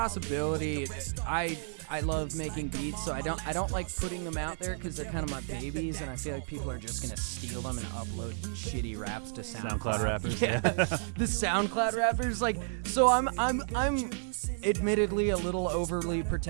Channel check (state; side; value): silent; left; digital silence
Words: I love making beats, so I don't like putting them out there because they're kind of my babies, and I feel like people are just gonna steal them and upload shitty raps to SoundCloud rappers. Yeah, the SoundCloud rappers. Like, so I'm admittedly a little overly